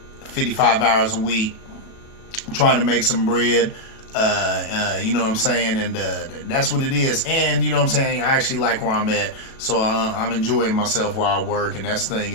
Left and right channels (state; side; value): late; right; 37 ms